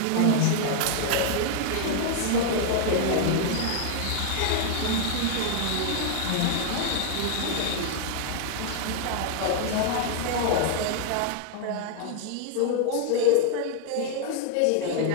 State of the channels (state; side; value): different; both; correlation 0.00